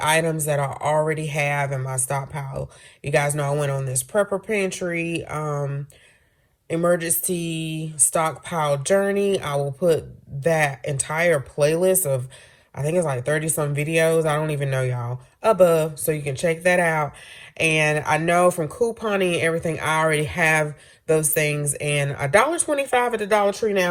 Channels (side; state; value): both; identical; correlation 1.00